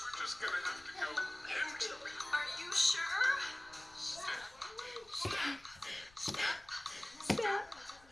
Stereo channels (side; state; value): left; noise; rumble, 26 dB below the sound